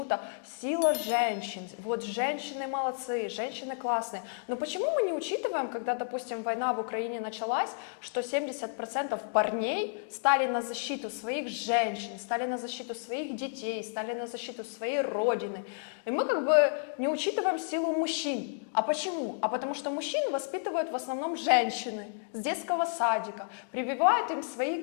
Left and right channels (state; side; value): silent; right; digital silence